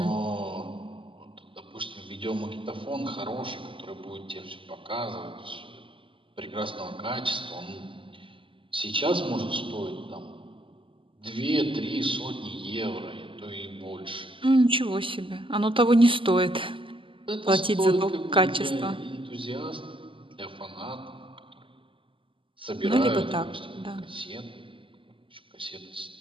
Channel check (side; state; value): left; late; 0.25 ms